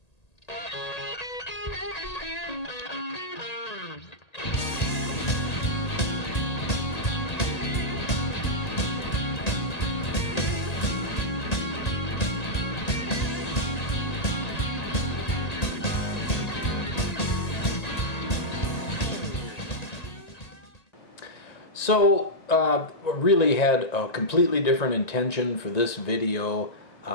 So, really had a completely different intention for this video,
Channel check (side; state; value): right; late; 1.8 ms